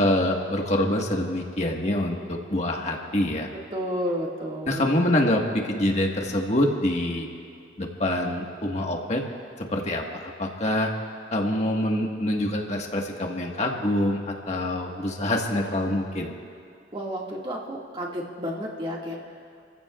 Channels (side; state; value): both; normal; correlation 0.55